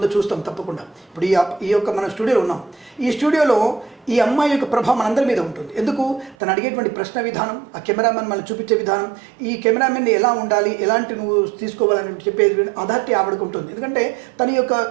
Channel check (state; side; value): drops out; left; at 6.4 s